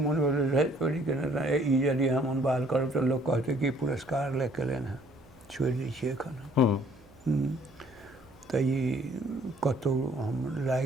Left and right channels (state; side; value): noise; right; hum, 26 dB below the sound